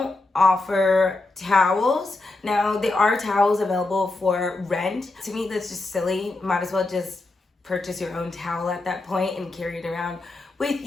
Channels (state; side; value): quieter; right; 3.1 dB